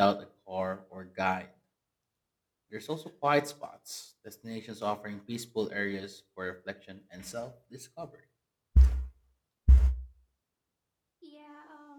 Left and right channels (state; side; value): identical; both; correlation 1.00